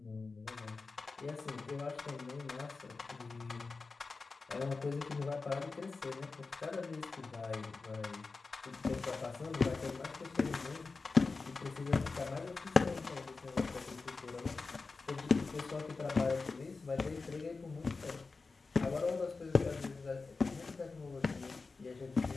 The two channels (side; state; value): right; quieter; 4.1 dB